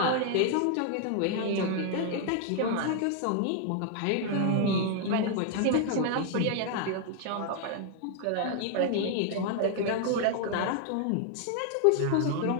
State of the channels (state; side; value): different; both; correlation 0.00